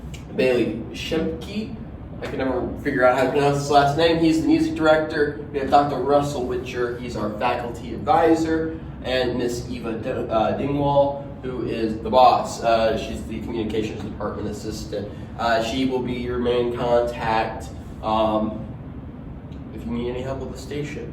Bailey Shemke. I can never figure out how to pronounce his last name. He's the music director. We have Dr. Russell Witcher. He's our faculty advisor. And Miss Eva Dingwall, who is the boss. She's the communications department assistant. She will be your main contact if you need any help with the station.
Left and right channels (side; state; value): both; identical; correlation 1.00